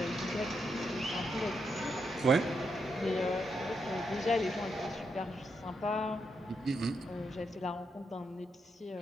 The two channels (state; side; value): normal; both; correlation 0.81